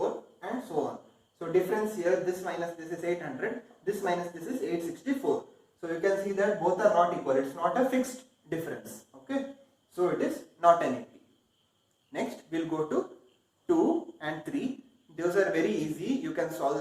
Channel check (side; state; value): both; identical; correlation 1.00